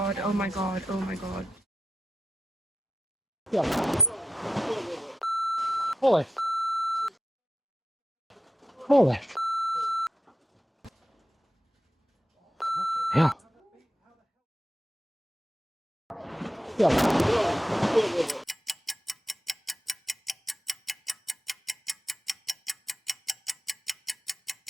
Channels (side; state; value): both; normal; correlation 0.89